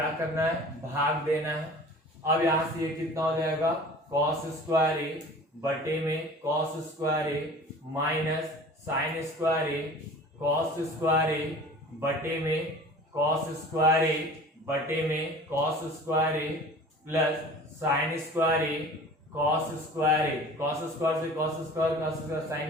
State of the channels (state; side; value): normal; both; correlation 0.43